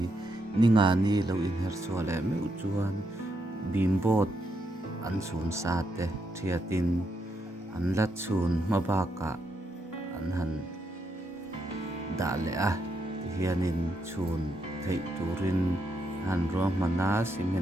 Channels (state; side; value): normal; both; correlation 0.80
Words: ninga ni lo in her chu le meu chuan bimbot an sun sa te thiatin an la chun mabaka an han da le a hianin chun thei turin han ro mana